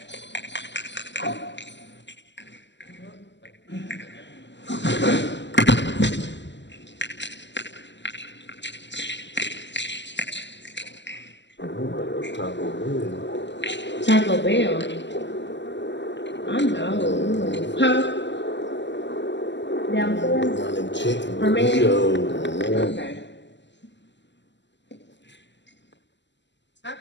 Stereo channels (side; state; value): right; late; 0.52 ms